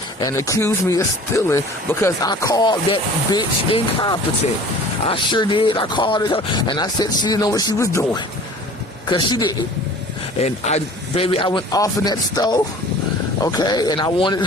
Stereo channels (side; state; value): both; normal; correlation 0.45